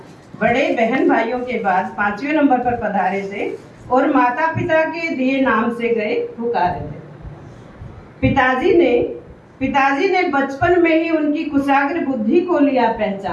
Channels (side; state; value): both; identical; correlation 1.00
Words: बड़े बहन भाइयों के बाद 5वें नंबर पर पधारे थे और माता पिता के दिए नाम से गए पुकारे थे। पिताजी ने बचपन में ही उनकी कुशाग्र बुद्धि को लिया